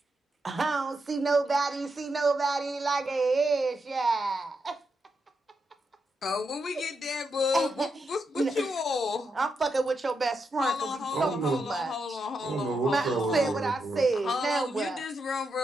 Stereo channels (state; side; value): normal; both; correlation 0.84